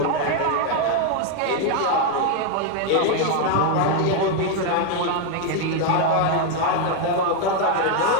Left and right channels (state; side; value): different; both; correlation 0.01